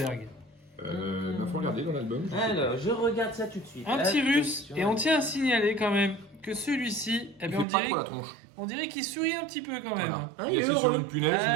Il faut regarder dans l'album. Alors, je regarde ça tout de suite. Un petit russe. Attention. Et on tient à signaler quand même que celui-ci, eh bien, on dirait qu'il sourit un petit peu quand même. Voilà. Ah, Il il est est sur heureux. une punaise, Ah,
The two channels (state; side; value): drops out; left; at 7.7 s